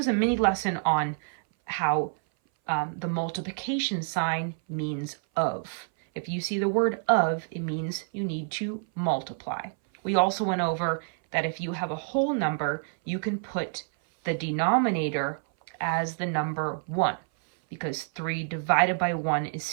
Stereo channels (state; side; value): silent; left; 58 dB below the other